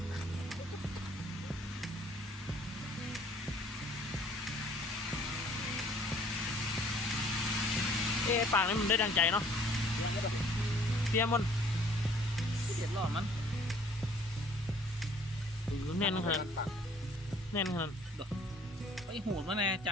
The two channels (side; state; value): both; normal; correlation 0.57